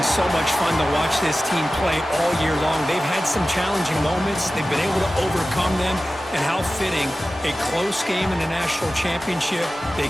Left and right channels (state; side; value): normal; both; correlation 0.95